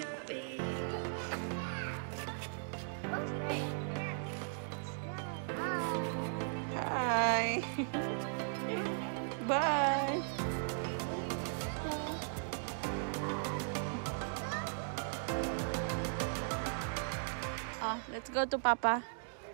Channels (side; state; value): left; silent; digital silence